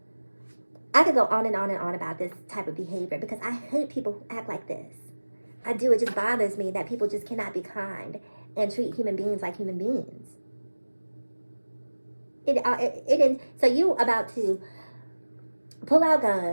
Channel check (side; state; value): both; inverted; correlation -1.00